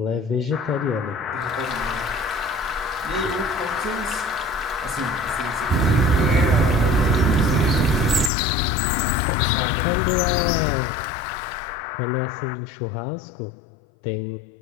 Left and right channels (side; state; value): right; drops out; at 8.3 s